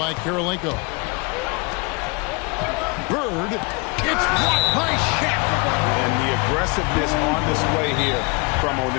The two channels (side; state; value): right; quieter; 29.8 dB